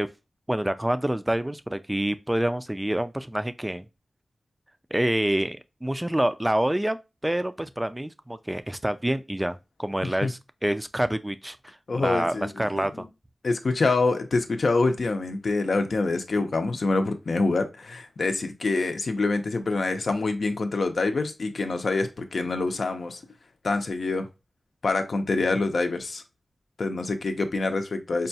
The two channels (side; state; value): both; normal; correlation 0.95